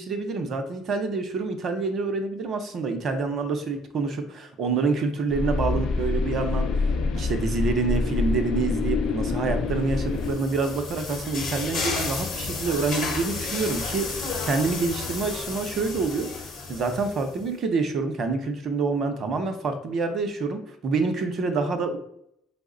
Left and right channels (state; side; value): normal; both; correlation 0.59